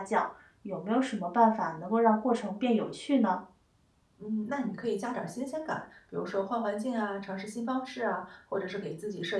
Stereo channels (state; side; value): identical; both; correlation 1.00